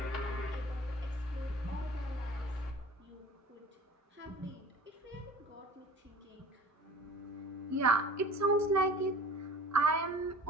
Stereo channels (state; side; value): normal; both; correlation 0.43